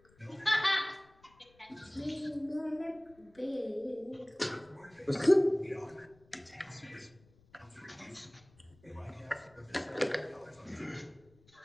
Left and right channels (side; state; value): left; noise; rumble, 29 dB below the sound